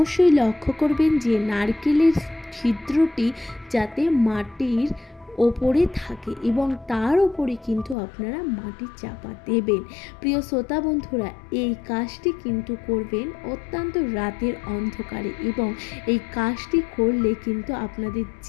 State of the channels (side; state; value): right; drops out; at 8.0 s